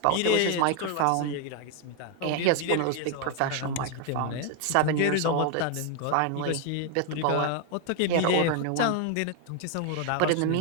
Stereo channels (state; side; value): different; both; correlation 0.01